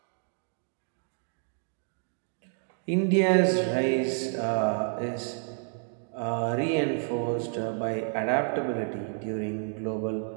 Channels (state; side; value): silent; left; 58 dB below the other